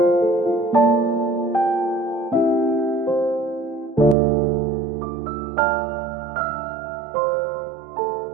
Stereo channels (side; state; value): left; drops out; at 4.2 s